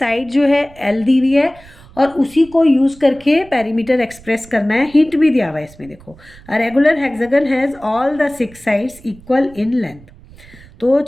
जो है एल दी हुई है, और उसी को यूज़ करके पेरीमीटर एक्सप्रेस करना है। हिंट भी दिया हुआ है इसमें, देखो, a regular hexagon has all the 6 sides equal in length. तो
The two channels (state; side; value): noise; right; rumble, 23 dB below the sound